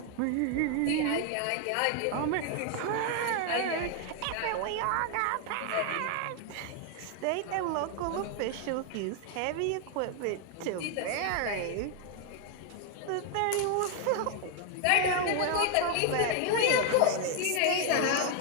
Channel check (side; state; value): both; different; correlation 0.00